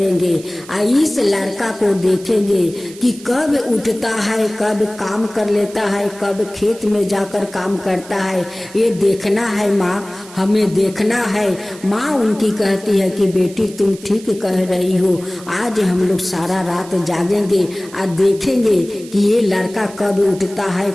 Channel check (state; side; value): noise; right; hiss, 19 dB below the sound